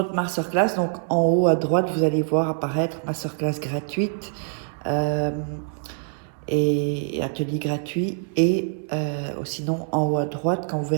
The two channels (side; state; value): left; silent; 62 dB below the other